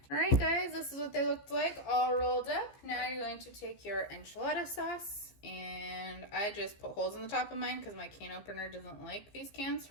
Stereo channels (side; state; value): right; late; 15 ms